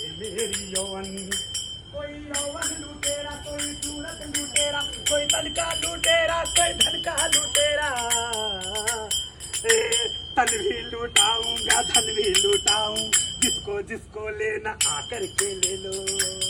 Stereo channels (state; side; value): identical; both; correlation 1.00